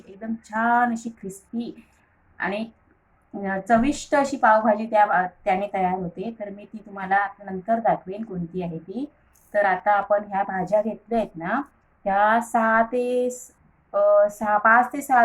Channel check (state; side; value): identical; both; correlation 1.00